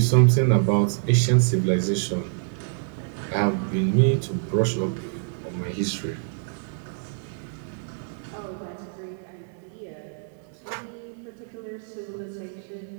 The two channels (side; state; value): left; silent; digital silence